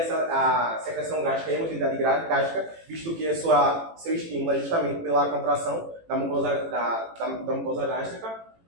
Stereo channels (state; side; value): late; left; 18 ms